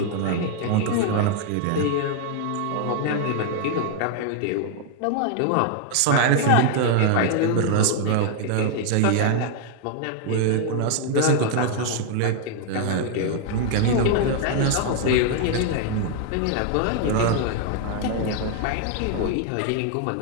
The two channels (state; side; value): different; both; correlation 0.00